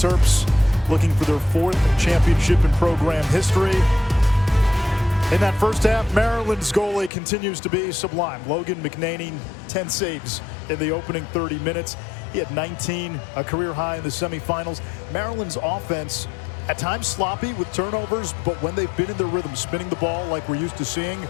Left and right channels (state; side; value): drops out; right; at 7.1 s